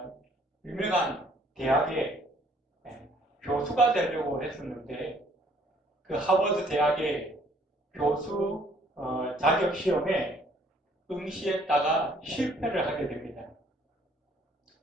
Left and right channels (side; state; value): both; normal; correlation 0.61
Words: 유명한 대학의 교수가 되려고 했었는데, 그 하버드 대학의 교수 자격 시험에 응시했다가 실패를 하게 됩니다.